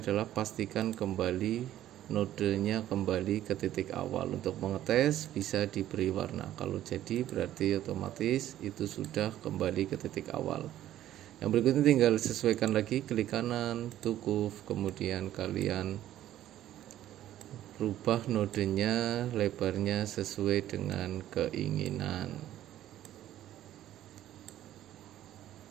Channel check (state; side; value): quieter; left; 12.7 dB